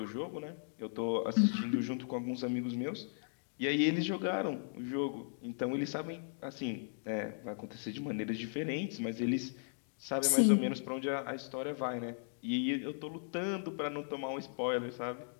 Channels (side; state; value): right; silent; digital silence